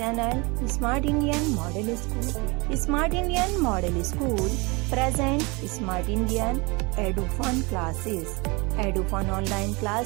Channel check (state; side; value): quieter; left; 27.4 dB